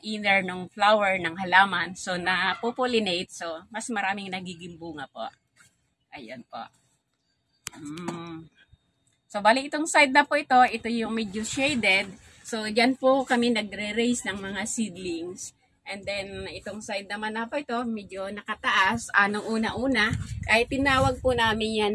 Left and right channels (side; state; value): both; identical; correlation 1.00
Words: ng flower ng halaman. So, napopollinate. So, mas maraming nagiging bunga po. Ayan po. So, bali itong side na po ito yung medyo shaded. So, dyan po kami nagre-raise ng mga seedlings. And then, itong side naman na po ito, medyo nakataas. Nung una-una, ay tinawag po namin yan